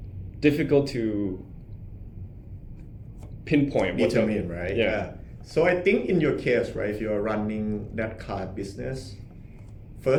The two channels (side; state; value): both; identical; correlation 1.00